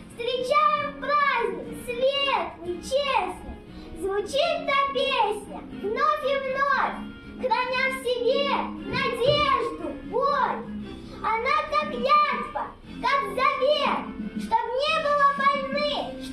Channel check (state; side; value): identical; both; correlation 1.00